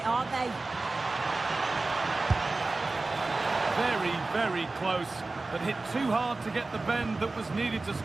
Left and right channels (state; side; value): quieter; left; 3.4 dB